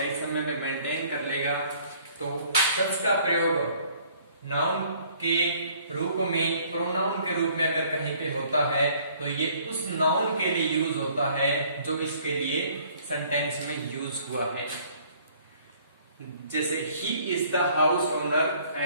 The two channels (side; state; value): both; inverted; correlation -0.58